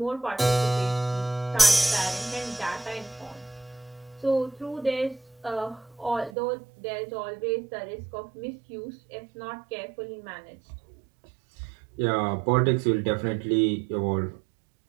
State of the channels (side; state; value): left; drops out; at 6.3 s